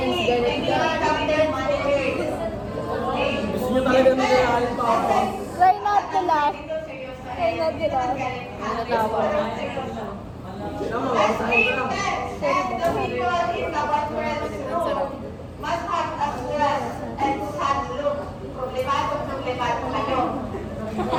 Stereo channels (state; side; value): identical; both; correlation 1.00